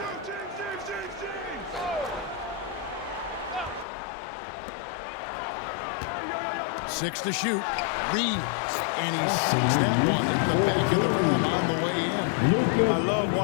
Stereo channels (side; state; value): right; drops out; at 3.9 s